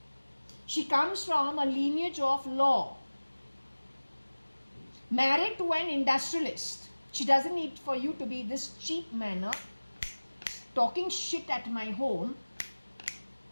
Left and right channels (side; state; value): both; inverted; correlation -1.00